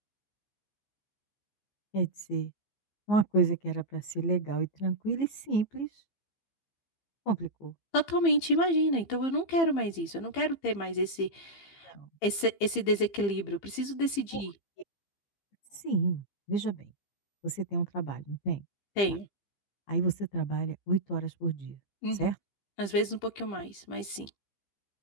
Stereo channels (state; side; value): late; right; 15 ms